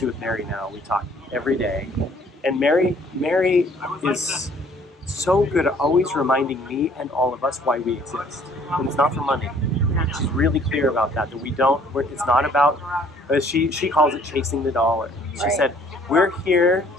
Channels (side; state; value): both; normal; correlation 0.59